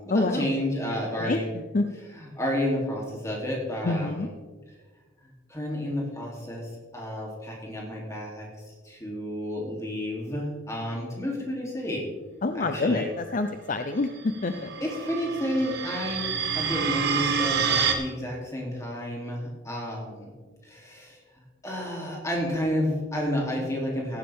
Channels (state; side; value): normal; both; correlation 0.46